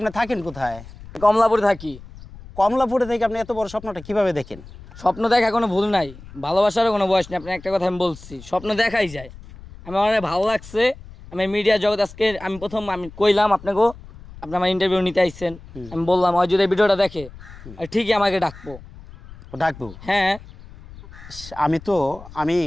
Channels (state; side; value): noise; left; rumble, 18 dB below the sound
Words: থাকেন কোথায়? কমলাপুরে থাকি। কমলাপুরে থেকে আপনি এত বড় স্বপ্নটা কিভাবে দেখেন? স্বপ্ন দেখা কোনো ভুল নাই, ভালোবাসারও কোনো বয়স নেই। আপনি একটা কথা আমি বলছি, স্বপ্ন দেখাই যায়। আমার অনেক ভালো লাগছে, আমি মিডিয়া জগৎ আজকে আমি প্রথম আমি কইলাম আপনাকেও, আপনি আমার ইন্টারভিউ নিতে আইছেন, আমি বললাম ওই যদি এই ভিডিওটা দেখে আর ঠিকই আমাকে ডাকবো। ও ডাকবো? হ্যাঁ। আমি